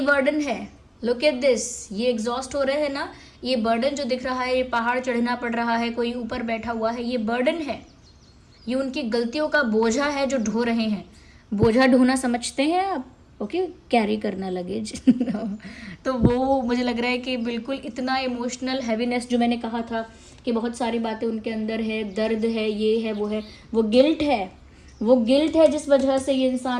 है, लुक एट दिस, ये एग्जॉस्ट हो रहे हैं ना, ये बर्डन जो दिख रहा है, ये पहाड़ चढ़ना पड़ रहा है, कोई ऊपर बैठा हुआ है, ये बर्डन है, ये उनकी गलतियों का बोझा है जो ढो रहे हैं। बोझा ढोना समझते हैं आप? ओके, कैरी करना लगेज तो वो मुझे लग रहा है कि बिल्कुल इतना इमोशनल हैवीनेस जो मैंने कहा था कि बहुत सारी बातें उनके अंदर है, दर्द है, ये है, वो है, वो गिल्ट है, वो गिल्ट है जिस वजह से ये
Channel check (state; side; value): identical; both; correlation 1.00